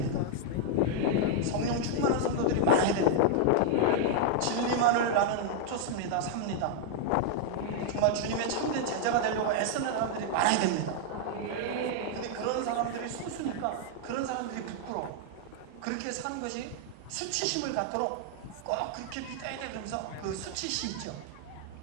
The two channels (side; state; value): both; different; correlation 0.00